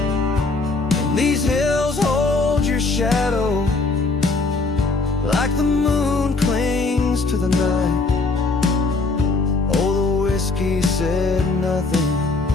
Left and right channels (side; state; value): right; quieter; 3.6 dB